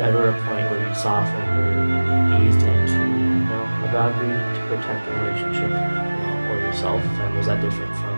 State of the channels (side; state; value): both; inverted; correlation -1.00